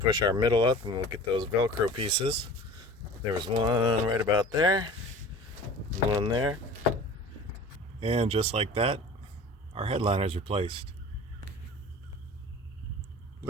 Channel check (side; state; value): both; normal; correlation 0.41